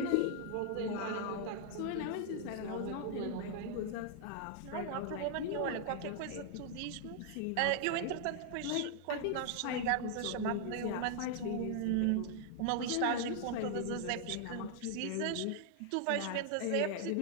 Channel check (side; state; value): both; different; correlation 0.00